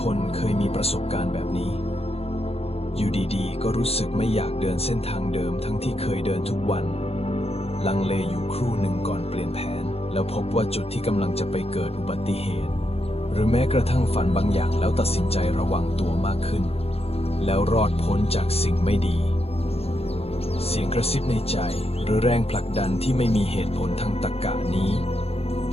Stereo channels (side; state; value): right; late; 0.29 ms